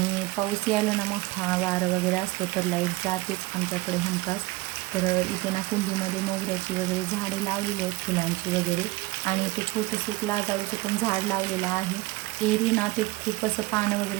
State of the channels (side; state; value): left; quieter; 20.9 dB